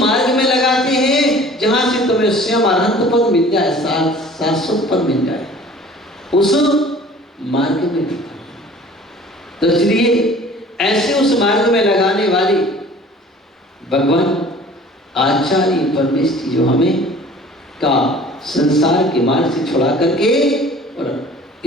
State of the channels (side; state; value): both; normal; correlation 0.48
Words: में लगाते हैं जहां से तुम्हें स्वयं अनंत पद मिल जाए, शाश्वत पद मिल जाए, उस मार्ग में लगाते हैं। तो इसलिए ऐसे उस मार्ग में लगाने वाले भगवान आचार्य परमेश्वर जो हमें का संसार के मार्ग से छुड़ा करके और